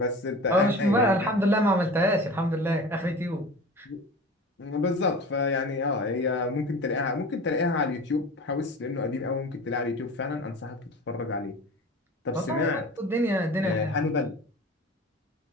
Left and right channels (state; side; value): normal; both; correlation 0.36